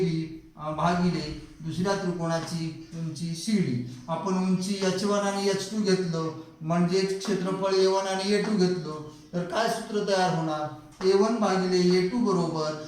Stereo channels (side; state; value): both; identical; correlation 1.00